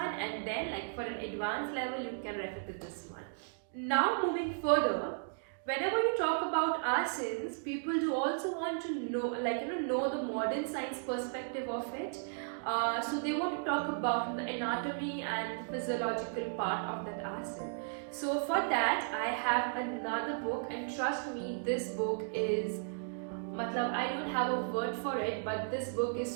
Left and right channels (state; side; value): silent; left; digital silence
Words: and then for an advanced level you can refer to this one. Now moving further, whenever you talk about asanas, people do also want to know know the modern science perspective of it. So they want to talk about the anatomy and the physiological part of that asana. So for that I have another book, and trust me, this book is I don't have a word for it, but this book